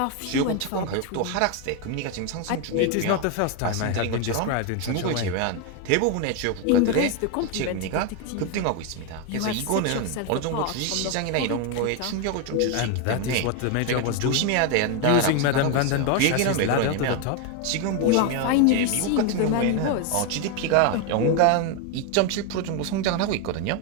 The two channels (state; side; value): different; both; correlation 0.01